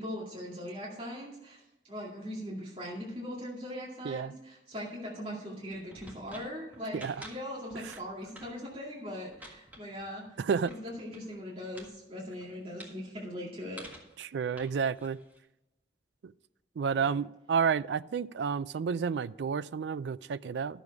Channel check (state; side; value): quieter; left; 4.4 dB